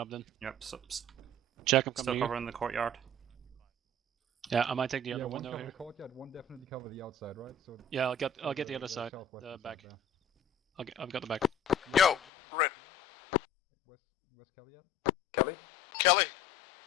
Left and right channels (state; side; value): drops out; right; at 12.2 s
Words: then. Yep, Check, I'm still coming to you. covering the courtyard. Yeah, I might take the Yeah, other one window cover here. the courtyard, one definitely cover the outside, right? So Yeah, I'll get the other side, southwestern the side back. there. I've got the back. Yo, Red. West Kelly yet? Kelly? Kelly.